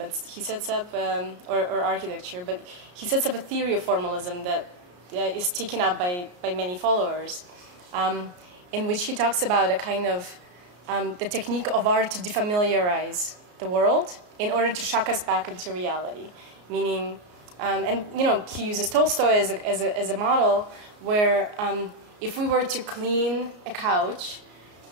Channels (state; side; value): late; left; 33 ms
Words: he sets up, or architecture, but he sets up a theory of formalism that is taken up by many followers, in which he talks about a kind of the technique of art to defamiliarize the world in order to shock us back into reality, meaning, and he uses Tolstoy as a model where if we were to clean a couch,